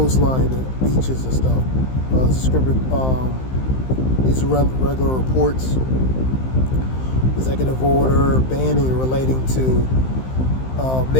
the beaches and stuff. These are regular reports. Executive order banning relating to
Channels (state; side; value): late; right; 15 ms